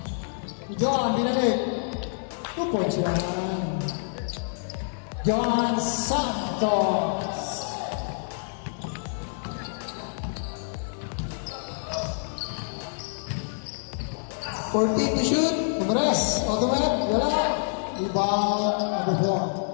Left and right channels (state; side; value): silent; right; digital silence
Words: John, binalik. 2 points yan. John Santos. $14 to shoot. Kumres. Automat. Wala. Rebound. Number 4.